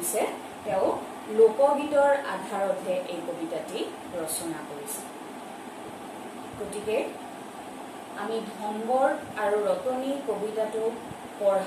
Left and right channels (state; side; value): identical; both; correlation 1.00